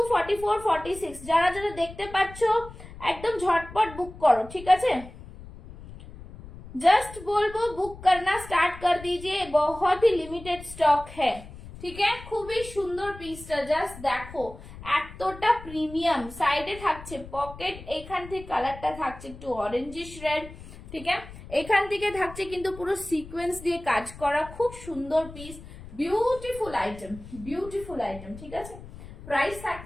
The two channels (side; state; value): left; noise; rumble, 16 dB below the sound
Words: 44, 46। যারা যারা দেখতে পাচ্ছ একদম ঝটপট বুক করো, ঠিক আছে। जस्ट बोलबो बुक करना स्टार्ट कर दीजिए, बहुत ही लिमिटेड स्टॉक है, ঠিক আছে। খুবই সুন্দর পিসটা, জাস্ট দেখো এতটা প্রিমিয়াম। সাইডে থাকছে পকেট, এখান থেকে কালারটা থাকছে একটু অরেঞ্জিশ রেড, ঠিক আছে। এখান থেকে থাকছে কিন্তু পুরো সিকোয়েন্স দিয়ে কাজ করা, খুব সুন্দর piece, beautiful item, beautiful item, ঠিক আছে। প্রাইস